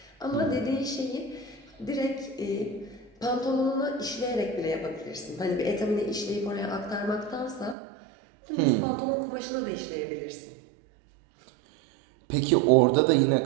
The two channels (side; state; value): left; drops out; at 7.8 s